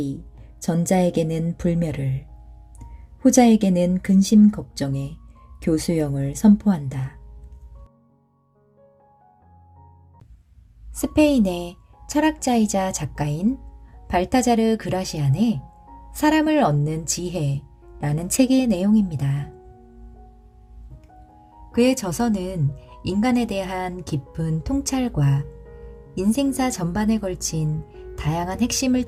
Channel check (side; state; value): both; identical; correlation 1.00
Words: 전자에게는 불멸을, 후자에게는 근심 걱정의 교수형을 선포한다. 스페인의 철학자이자 작가인 발타자르 그라시안의 사람을 얻는 지혜라는 책의 내용입니다. 그의 저서는 인간에 대한 깊은 통찰과 인생사 전반에 걸친 다양한 핵심을